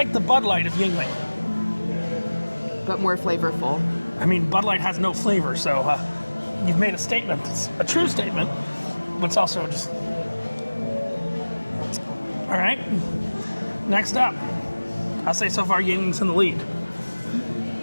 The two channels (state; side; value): inverted; both; correlation -1.00